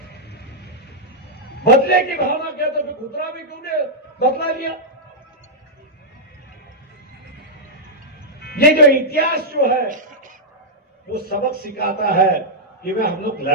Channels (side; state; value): both; normal; correlation -0.07